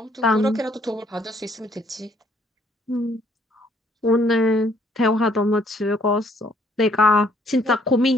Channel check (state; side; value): normal; both; correlation 0.65